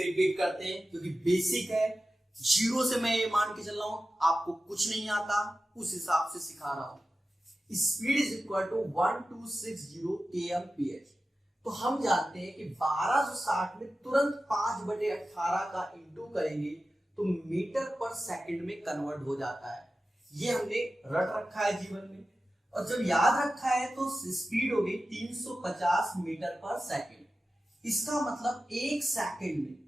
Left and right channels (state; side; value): normal; both; correlation 0.94